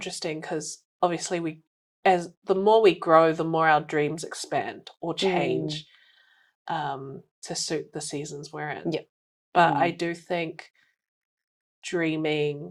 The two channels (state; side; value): identical; both; correlation 1.00